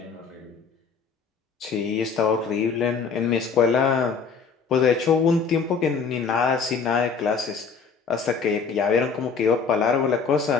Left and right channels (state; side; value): quieter; right; 5.5 dB